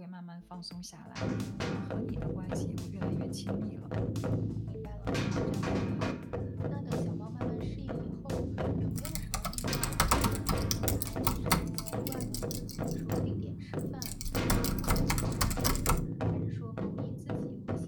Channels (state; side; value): identical; both; correlation 1.00